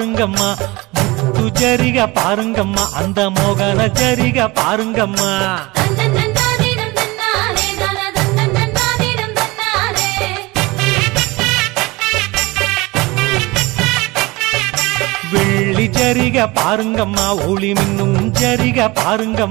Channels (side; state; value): left; quieter; 22.6 dB